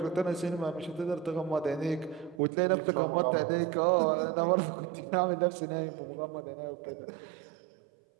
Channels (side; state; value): left; drops out; at 2.4 s